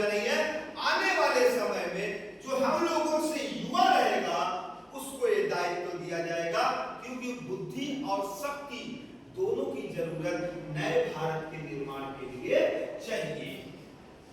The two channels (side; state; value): both; identical; correlation 1.00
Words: नहीं है। आने वाले समय में जो हम लोगों से युवा रहेगा उसको ये दायित्व दिया जाएगा, क्योंकि बुद्धि और शक्ति दोनों की जरूरत नए भारत के निर्माण के लिए चाहिए।